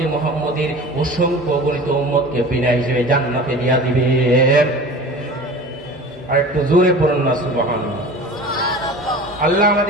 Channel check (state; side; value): normal; both; correlation 0.38